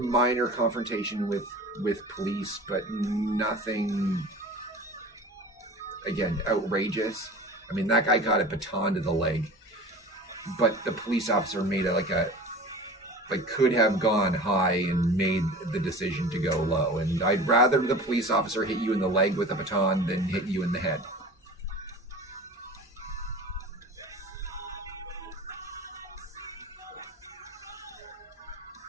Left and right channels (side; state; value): both; normal; correlation 0.38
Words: minor confrontation with police, but nothing, again, outrageous. I mean, that guy got a baton to the leg, but the police officer made could have gone high and made the decision to go low. And I'd rather the police officer hit you in the leg with a baton than hit you in the head.